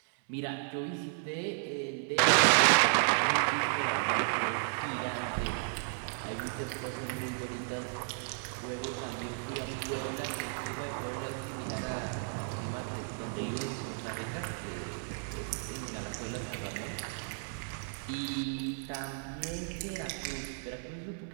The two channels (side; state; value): left; silent; 55 dB below the other